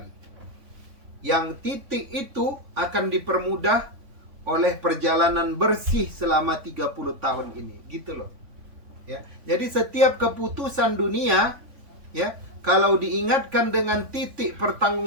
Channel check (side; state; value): left; late; 3.5 ms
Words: yang titik itu akan dipermudah oleh perjalanan bersih selama 30 tahun ini, gitu loh. Ya. Jadi setiap keputusan dunia, ya, kalau diingatkan dengan titik